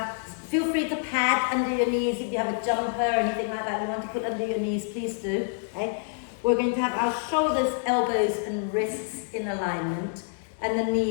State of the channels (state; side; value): silent; right; 60 dB below the other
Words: feel free to pad under your knees if you have a jumper or anything like that you want to put under your knees, please do. Okay? We're going to have our shoulders, elbows and wrists in alignment, and the